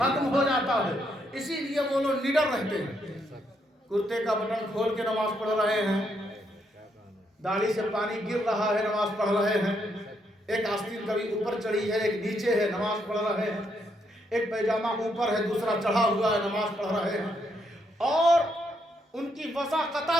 ہو جاتا ہے۔ اسی لیے وہ لوگ نڈر رہتے ہیں، کرتے کا بٹن کھول کے نماز پڑھ رہے ہیں، داڑھی سے پانی گر رہا ہے، نماز پڑھ رہے ہیں، ایک آستین کبھی اوپر چڑھی ہے ایک نیچے ہے، نماز پڑھ رہے ہیں، ایک پیجامہ اوپر ہے دوسرا چڑھا ہوا ہے، نماز پڑھ رہے ہیں۔ اور ان کی وضاقتہ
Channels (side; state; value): both; normal; correlation 0.76